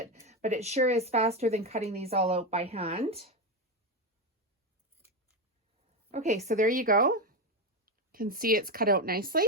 but it sure is faster than cutting these all out by hand. Okay, so there you go. You can see it's cut out nicely.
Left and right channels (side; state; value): both; normal; correlation 0.13